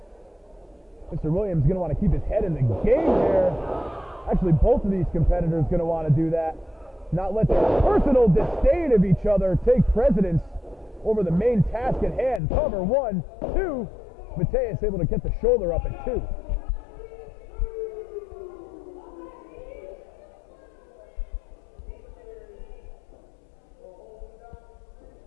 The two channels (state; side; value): drops out; right; at 12.4 s